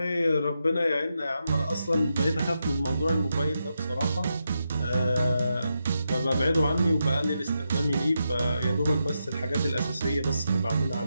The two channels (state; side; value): inverted; both; correlation -0.85